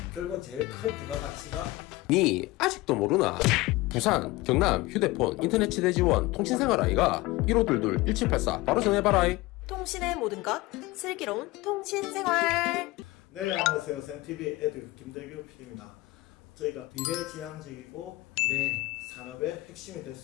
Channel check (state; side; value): quieter; right; 20.2 dB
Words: 결국은 제일 큰 부가가치가 니 아직도 모르나? 부산, 경남, 휴대폰, 인터넷 치대 지원, 통신생활 아이가 1522-1784 바로 전해봐라. 통신의 모든 것, 슬기로운 통신생활. 네, 안녕하세요. 샘TV 에듀 김대규 PD입니다. 저희가 미래지향적이고 미래 산업의 핵심이 될